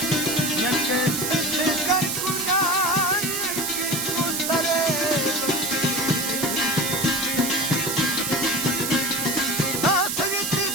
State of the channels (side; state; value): right; noise; hiss, 1 dB below the sound